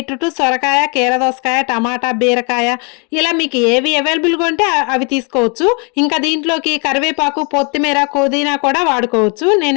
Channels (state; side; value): quieter; right; 34.6 dB